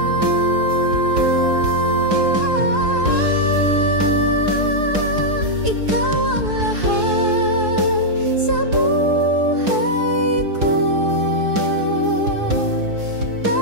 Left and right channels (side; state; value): left; late; 4.8 ms